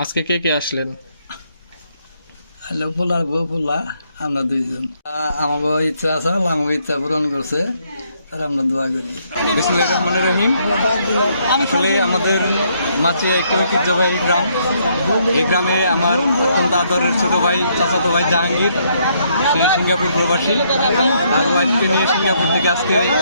আজকে কে কে আসলেন? পোলার বউ, পোলা, আমরা দুইজন। আমাকে ইচ্ছা আছে, আমাকে ইচ্ছা পূরণ করছে, আর আমরা দোয়া করি। বিসমিল্লাহির রহমানির রহিম। আসলে আমাদের মাছিয়া একটি ঐতিহ্যবাহী গ্রাম। এই গ্রামে আমার অত্যন্ত আদরের ছোট ভাই, চাচাতো ভাই জাহাঙ্গীর, সে সিঙ্গাপুর প্রবাসী। তার ওয়াইফকে নিয়ে সিঙ্গাপুর থেকে আজকে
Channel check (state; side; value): inverted; both; correlation -0.71